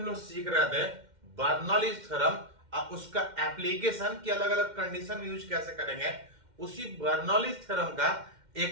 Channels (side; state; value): left; late; 2.1 ms